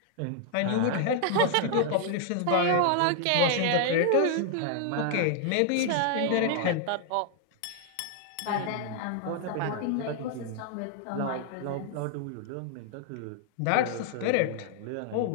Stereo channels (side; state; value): both; different; correlation 0.00